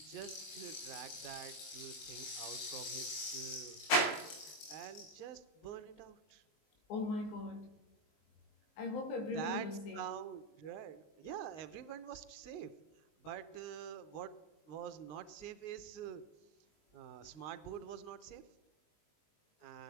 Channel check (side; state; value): right; late; 19 ms